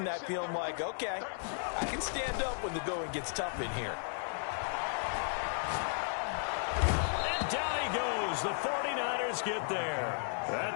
that feeling like, okay, I can stand up when the going gets tough in here. And down he goes. The 49ers get there.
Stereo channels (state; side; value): silent; right; 55 dB below the other